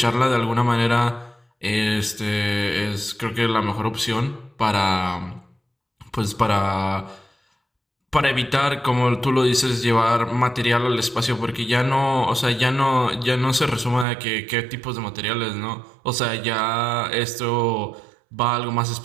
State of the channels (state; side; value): drops out; left; at 14.1 s